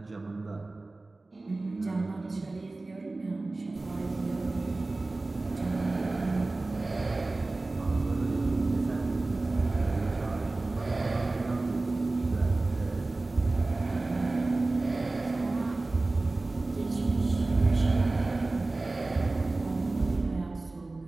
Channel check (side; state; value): left; quieter; 3.2 dB